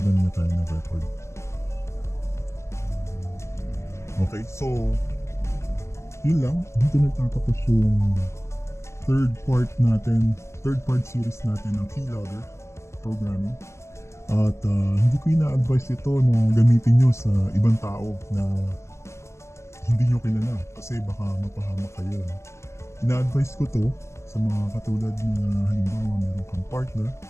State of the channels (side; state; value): right; late; 0.13 ms